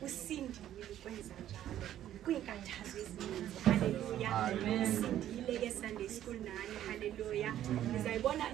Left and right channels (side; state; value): left; quieter; 11.8 dB